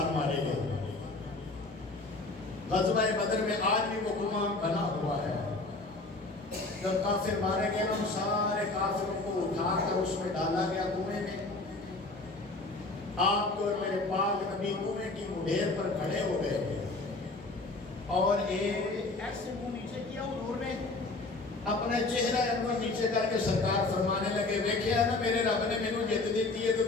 مارے گئے۔ غزوہ بدر میں آج بھی وہ کنواں بنا ہوا ہے، جب کافر مارے گئے ان سارے کافروں کو اٹھا کر اس میں ڈالا گیا کنویں میں۔ آپ کو میرے پاک نبی کنویں کی مڈھیر پر کھڑے ہو گئے اور ایسے منہ نیچے کیا حضور نے، اپنے چہرہ انور نیچے کر کے سرکار فرمانے لگے، دیکھیا نا میرے رب نے مینوں جت دیتی ہے تو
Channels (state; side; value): quieter; right; 3.2 dB